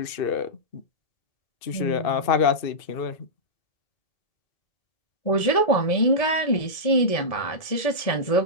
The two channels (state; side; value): late; right; 1.7 ms